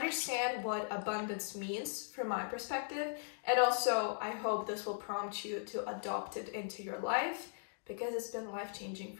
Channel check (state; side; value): silent; right; digital silence